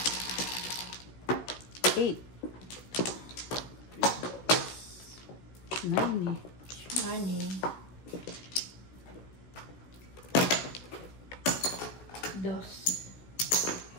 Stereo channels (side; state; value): right; late; 16 ms